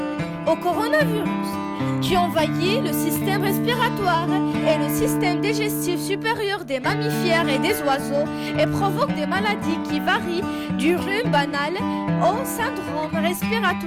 au coronavirus, qui envahit le système respiratoire et le système digestif supérieur des mammifères et des oiseaux et provoque des maladies qui varient du rhume banal au syndrome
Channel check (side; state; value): both; identical; correlation 1.00